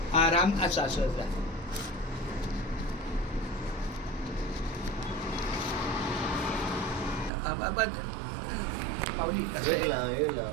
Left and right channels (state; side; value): drops out; left; at 7.3 s